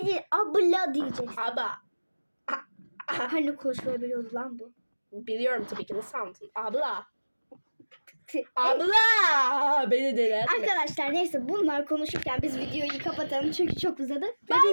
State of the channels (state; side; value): inverted; both; correlation -1.00